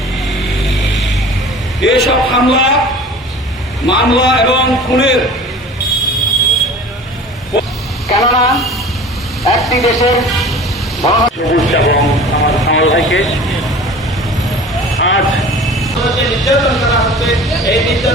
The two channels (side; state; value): both; normal; correlation 0.41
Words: এসব হামলা, মামলা এবং খুনের, কেননা একটি দেশের এবং আমার কামাল ভাইকে আজ যে নির্যাতন করা হচ্ছে, এই